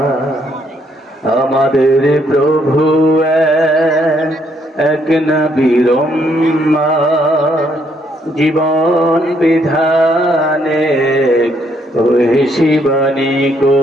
আমাদের প্রভু এক নবীর উম্মত, জীবন বিধানে ওই শিবানী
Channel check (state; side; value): normal; both; correlation 0.71